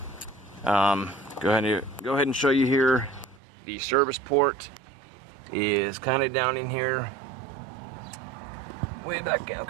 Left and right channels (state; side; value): drops out; left; at 3.4 s